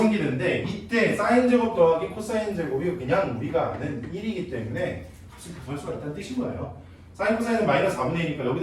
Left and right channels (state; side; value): identical; both; correlation 1.00